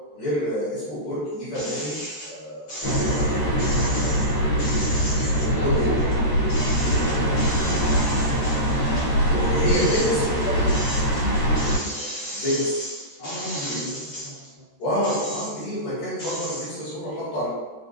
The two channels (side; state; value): right; late; 13 ms